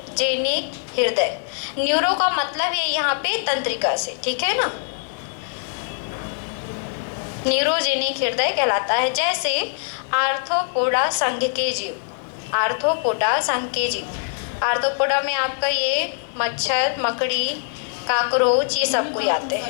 हृदय, न्यूरो का मतलब है यहाँ पे तंत्रिका से, ठीक है ना, न्यूरोजेनिक हृदय कहलाता है। जैसे आर्थ्रोपोडा संघ के जीव, आर्थ्रोपोडा संघ के जीव, आर्थ्रोपोडा में आपका ये मच्छर, मकड़ी, काकरोच ये सब कोई आते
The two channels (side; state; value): right; silent; 64 dB below the other